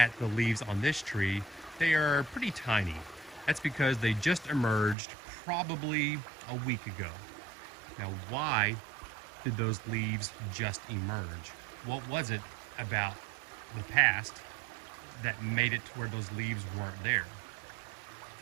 the leaves on this tree, they are pretty tiny. That's because they just emerged probably a week ago. Now, why did those leaves just emerge? What was it about the past that made it to where those leaves weren't there?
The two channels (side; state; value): left; drops out; at 5.0 s